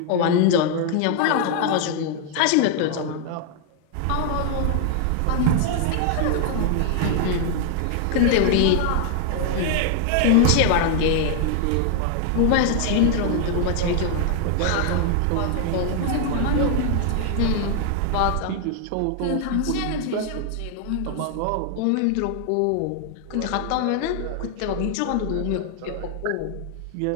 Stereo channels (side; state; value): both; different; correlation 0.00